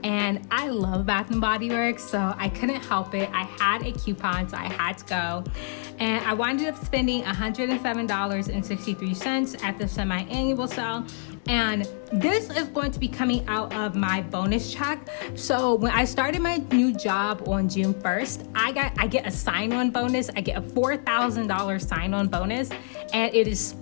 And I love Bath and Body Works, so I couldn't help it. I had a coupon, so I had to go. And I wound up spending $107.63 at the semi-annual sale. And this is going to be coming out of my bonus check. So when I started my new job on June 1st, I get a sign-on bonus. I get a $4,000 sign-on bonus, and it is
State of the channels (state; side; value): silent; right; 61 dB below the other